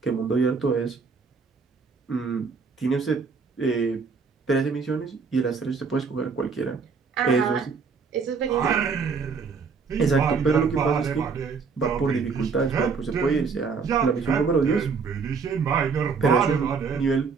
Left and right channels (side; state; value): left; quieter; 5.2 dB